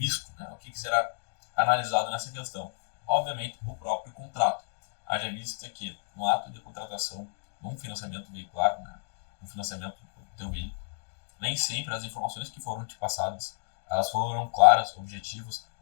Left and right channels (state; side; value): silent; right; digital silence